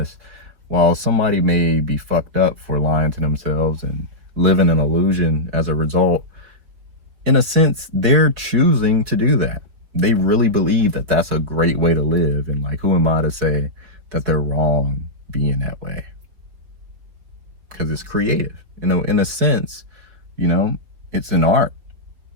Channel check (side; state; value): left; late; 4.9 ms